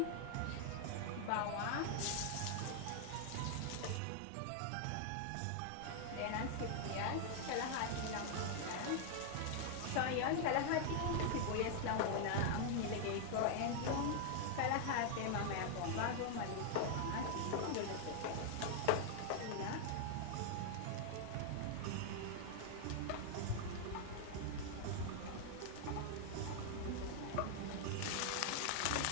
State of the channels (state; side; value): different; both; correlation 0.00